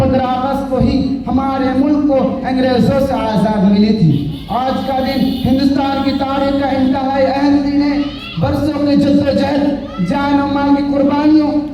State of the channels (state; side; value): identical; both; correlation 1.00